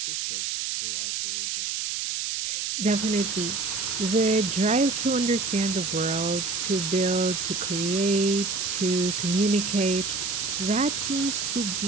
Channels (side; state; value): right; noise; hiss, 2 dB below the sound